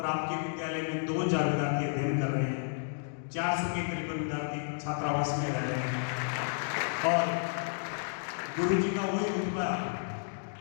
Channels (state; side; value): silent; right; digital silence